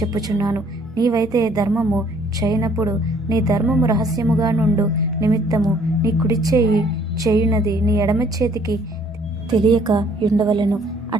నీవైతే ధర్మము చేయనప్పుడు నీ ధర్మము రహస్యముగా నుండు నిమిత్తము నీ కుడి చేయి చేయునది నీ ఎడమ చేతికి తెలియక ఉండవలెను.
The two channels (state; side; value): normal; both; correlation 0.61